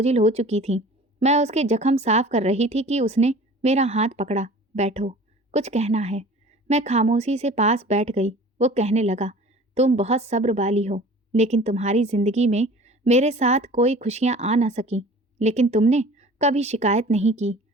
हो चुकी थीं। मैं उसके जख्म साफ कर रही थी कि उसने मेरा हाथ पकड़ा। बैठो, कुछ कहना है। मैं खामोशी से पास बैठ गई। वो कहने लगा, तुम बहुत सब्र वाली हो, लेकिन तुम्हारी ज़िंदगी में मेरे साथ कोई खुशियाँ आ ना सकी, लेकिन तुमने कभी शिकायत नहीं की।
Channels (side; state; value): both; normal; correlation 0.44